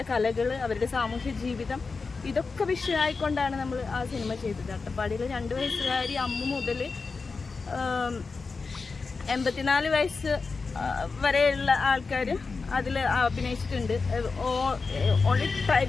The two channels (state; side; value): quieter; right; 4.4 dB